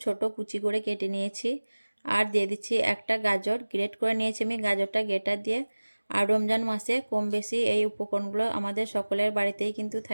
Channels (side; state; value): both; inverted; correlation -1.00